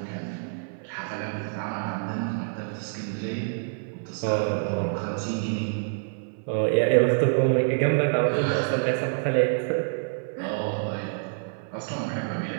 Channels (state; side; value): silent; left; 55 dB below the other